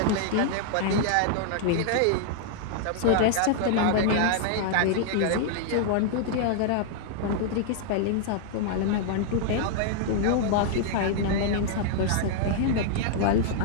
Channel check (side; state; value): both; different; correlation -0.01